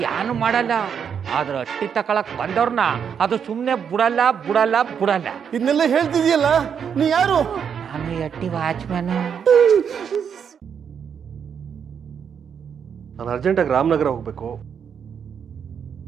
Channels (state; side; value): quieter; left; 7.5 dB